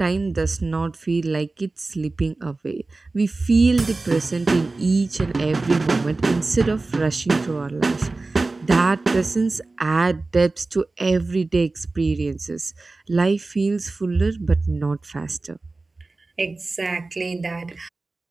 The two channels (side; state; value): left; quieter; 3.4 dB